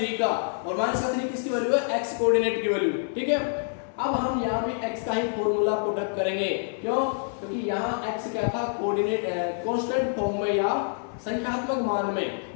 का, और -3 किसकी वैल्यू है? एक्स कोऑर्डिनेट की वैल्यू। ठीक है, अब हम यहाँ भी x का ही फॉर्मूला पुट अप करेंगे। क्यों? क्योंकि यहाँ x क्या था? कोऑर्डिनेट कांस्टेंट फॉर्म में या संख्यात्मक मान में।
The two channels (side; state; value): right; silent; digital silence